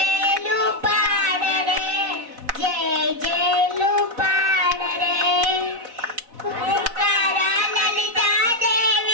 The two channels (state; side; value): late; left; 4.1 ms